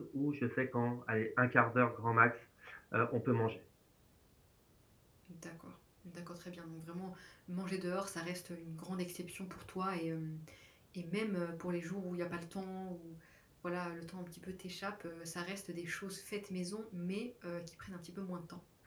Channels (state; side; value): identical; both; correlation 1.00